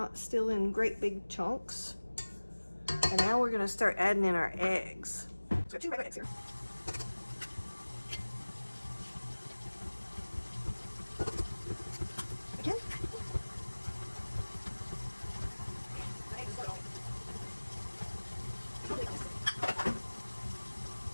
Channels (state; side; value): inverted; both; correlation -1.00